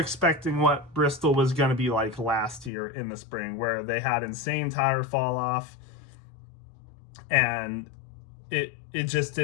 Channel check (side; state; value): right; drops out; at 2.7 s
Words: what Bristol was going to be like last year in the spring, where they had insane tire fall off, and it just